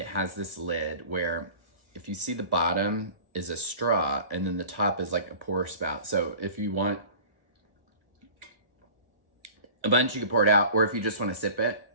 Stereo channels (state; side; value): late; left; 1.5 ms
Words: has this lid where if you see the bottom is a straw and then the top is like a pour spout. So if you want a bunch, you can pour it out, or if you just want to sip it,